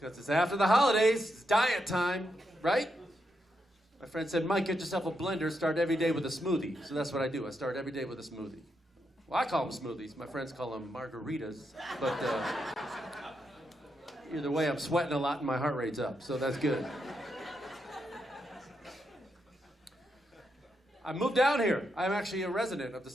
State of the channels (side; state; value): both; normal; correlation 0.82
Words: it's after the holidays. It's diet time, right? My friend said, Mike, get yourself a blender. Start every day with a smoothie. So that's what I do. I start every day with a smoothie. Well, I call them smoothies. My friends call them margaritas. But either way, I'm sweating a lot and my heart rate's up. So that's good. I moved down here. I'm actually a resident of the